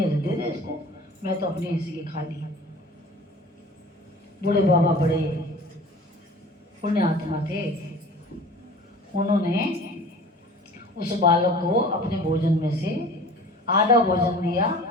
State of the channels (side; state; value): both; normal; correlation 0.43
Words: तो दे दे इसको, मैं तो अपनी इसी के खा ली। बूढ़े बाबा बड़े पुण्य आत्मा थे। उन्होंने उस बालक को अपने भोजन में से आधा भोजन दिया,